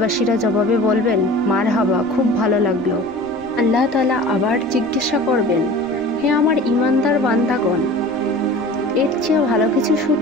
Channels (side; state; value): right; noise; rumble, 23 dB below the sound